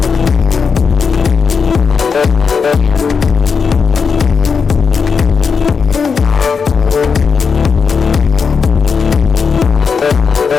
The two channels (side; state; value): right; quieter; 5.7 dB